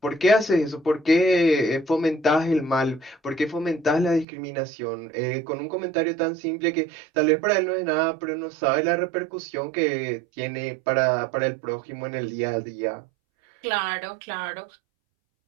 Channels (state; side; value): drops out; left; at 4.2 s